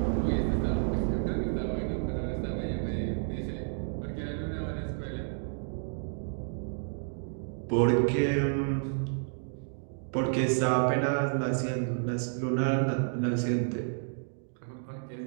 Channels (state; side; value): silent; left; digital silence